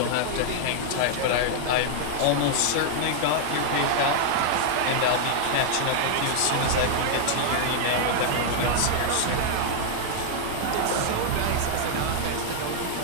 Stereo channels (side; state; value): both; different; correlation -0.01